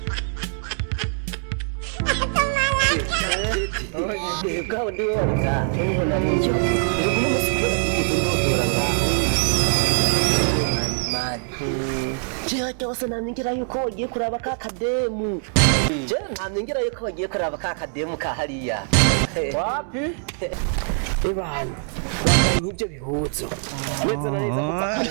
Kau ndiwe warika niho nariyo iri kumwe musikora kigeze ndodora ngaho man je cyose namingira yuko wagiye kuraba ka kademu je namingira yuko wagiye kuraba ka kademu ka hariya Wapi? Ibana bambaye nk'ibyo bihuzo neza na neza kuva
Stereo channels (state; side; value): silent; left; 63 dB below the other